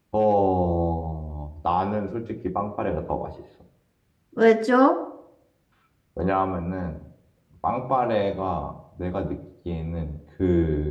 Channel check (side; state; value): both; identical; correlation 1.00